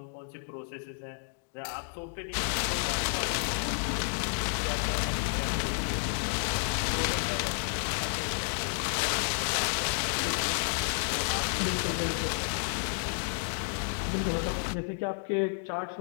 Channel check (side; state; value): right; silent; digital silence